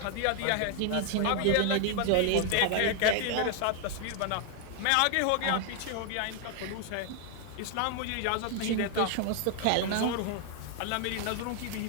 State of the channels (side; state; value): both; different; correlation 0.00